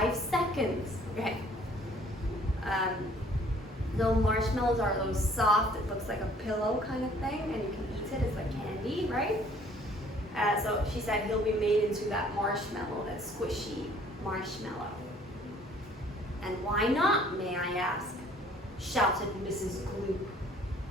seconds. Okay. The marshmallows are those soft, it looks like a pillow kind of thing, and you can eat it, it's like candy, right? So she said he'll be made into that marshmallow, that squishy marshmallow. "And why not, may I ask?" shouted Mrs. Gloop.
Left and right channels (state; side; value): normal; both; correlation 0.57